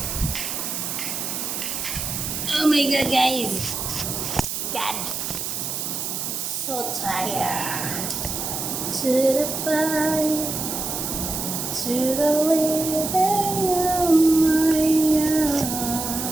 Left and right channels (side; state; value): right; noise; hiss, 3 dB below the sound